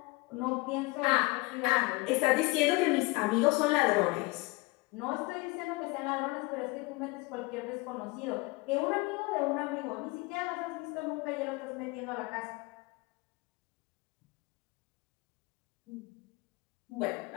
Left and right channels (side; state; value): right; quieter; 24.3 dB